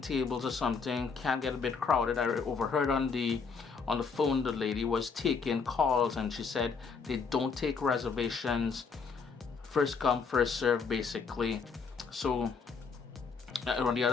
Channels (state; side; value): quieter; right; 5.3 dB